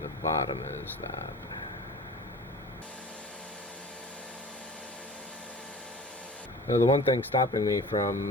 bottom as that. Now, the one thing stopping me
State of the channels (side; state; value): both; normal; correlation 0.40